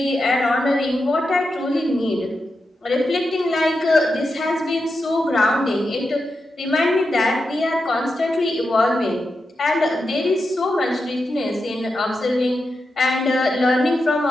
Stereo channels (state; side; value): normal; both; correlation 0.88